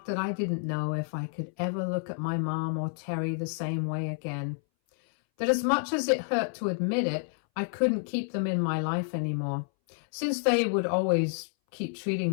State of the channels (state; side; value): silent; right; 58 dB below the other